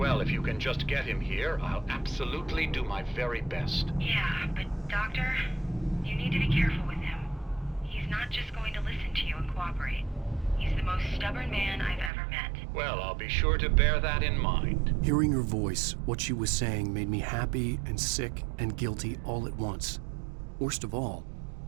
if you can just get him here, I'll absolutely do my very best. Yeah, but Doctor, you need to be careful with him. He's not just going to listen to you and cooperate. He's the most stubborn man I've ever met. Well, I'll be sure to bear that in mind. Hearing her voice, what she was saying made me happy and sick and guilty all at once. Worst of all,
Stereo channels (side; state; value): left; drops out; at 12.1 s